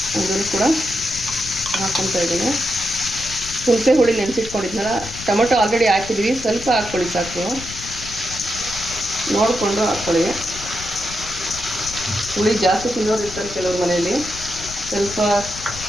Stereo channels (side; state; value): left; noise; rumble, 13 dB below the sound